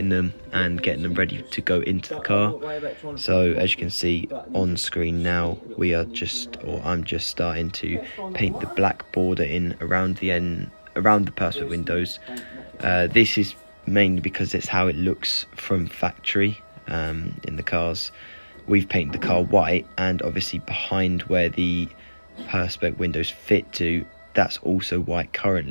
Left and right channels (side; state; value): both; inverted; correlation -1.00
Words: them and getting them ready to go into the car. So as you can see on screen now, I'm just starting to paint the black border in around the perspex windows. This is mainly because it's how it looks from factory in the cars. We've painted the car white, and obviously behind where the perspex windows fit to, that's also white